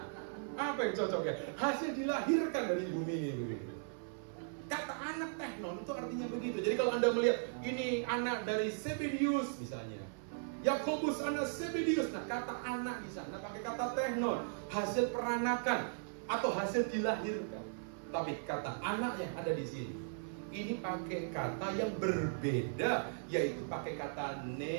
Apa yang cocok ya? Hasil dilahirkan dari bumi ini. Kata anak teknon itu artinya begitu. Jadi kalau Anda melihat ini anak dari Zebedius misalnya, Yakobus anak Zebedius, nah kata anak di sana pakai kata teknon, hasil peranakan atau hasil dilahirkan. Tapi kata anak yang ada di sini, ini pakai kata yang berbeda, yaitu pakai kata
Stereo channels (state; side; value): silent; left; 53 dB below the other